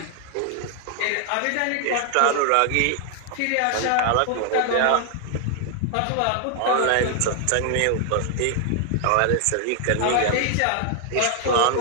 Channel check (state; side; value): different; both; correlation 0.00